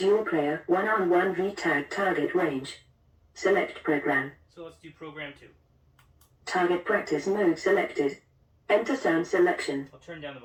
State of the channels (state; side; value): identical; both; correlation 1.00